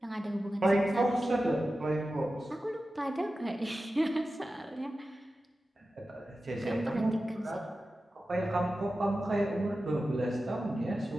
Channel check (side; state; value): both; normal; correlation 0.93